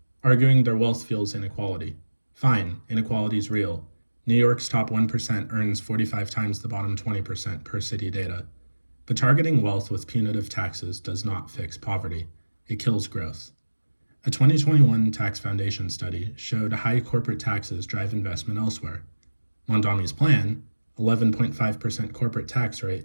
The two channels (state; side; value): inverted; both; correlation -1.00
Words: arguing their wealth fuels inequality. Fine, inequality's real. New York's top 1% earns 45 times the bottom 20% per city data. But targeting wealth with punitive taxes does not fix poverty. It kills growth. A 2021 Tax Foundation study showed high corporate taxes drive investment elsewhere. Mamdani's plan, 11.5% corporate tax